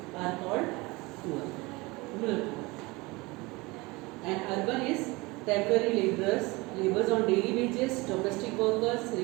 are called poor. Rural. And urban is temporary laborers, laborers on daily wages, domestic workers,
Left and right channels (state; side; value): quieter; left; 23.6 dB